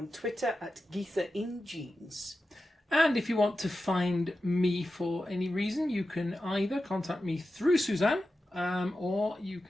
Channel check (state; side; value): normal; both; correlation 0.92